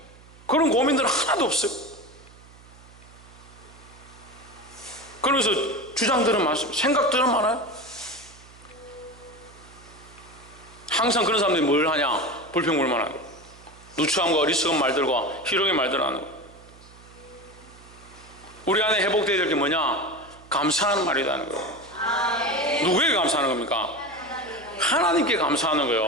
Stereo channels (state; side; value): noise; right; hum, 23 dB below the sound